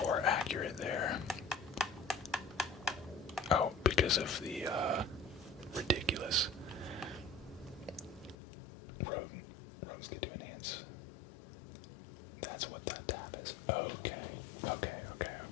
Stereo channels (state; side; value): drops out; right; at 8.3 s